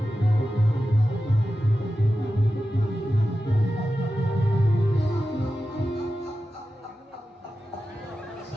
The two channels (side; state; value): both; normal; correlation 0.92